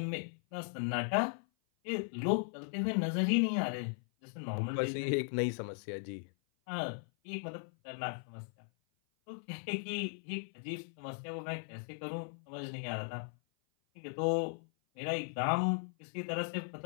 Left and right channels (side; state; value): right; silent; 53 dB below the other